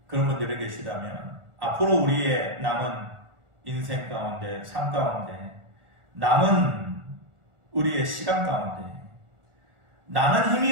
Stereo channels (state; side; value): late; left; 1.4 ms